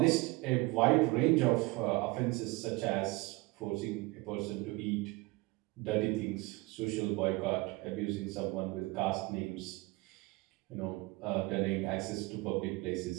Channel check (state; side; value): quieter; left; 22.9 dB